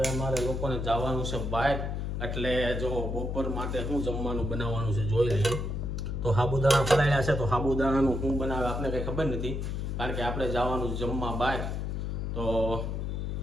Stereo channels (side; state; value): left; noise; hum, 2 dB below the sound